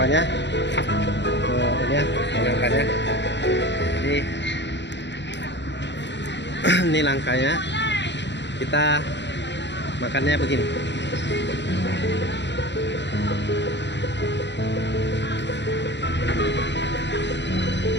Ini ya, nangkanya. Ini nangkanya. Kita makannya begini.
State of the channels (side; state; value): right; late; 0.51 ms